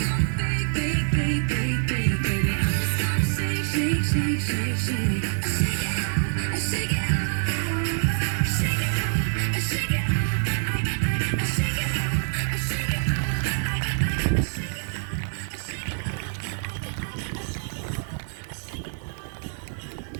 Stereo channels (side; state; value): left; silent; 60 dB below the other